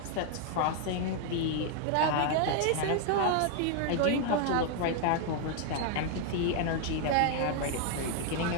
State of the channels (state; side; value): different; both; correlation 0.00